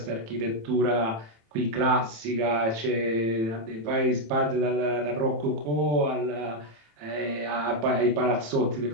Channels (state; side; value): late; left; 27 ms